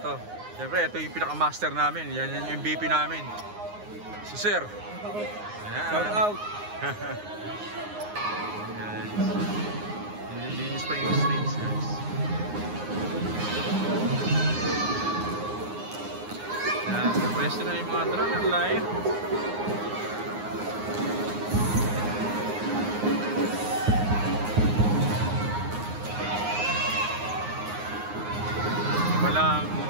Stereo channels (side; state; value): left; late; 9.6 ms